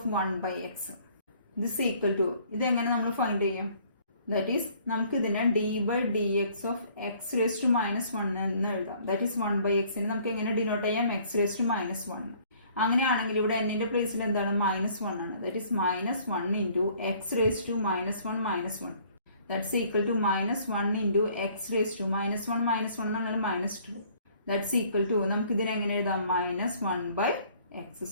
1 by x. This equal to, ഇതെങ്ങനെ നമ്മൾ ഫൈൻഡ് ചെയ്യും, ദാറ്റ് ഈസ് നമുക്ക് ഇതിനെ d by D X of X raise to minus 1 എന്ന് എഴുതാം. ദാറ്റ് ഈസ് 1 ബൈ എക്സിന് നമുക്ക് എങ്ങനെ ഡിനോട്ട് ചെയ്യാം, എക്സ് റേസ് ടു മൈനസ് 1. അങ്ങനെയാണെങ്കിൽ ഇവിടെ എന്നിന്റെ പ്ലേസിൽ എന്താണ്, -1 ആണ്. That is -1 into X raise to -1 -1. That's equal to -1 into x raised to -1 എന്ന് പറഞ്ഞാൽ -2. That's equal to, നമുക്ക് ഇതിനെ എങ്ങനെ എഴുതാം, -1 by x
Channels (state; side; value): inverted; both; correlation -0.59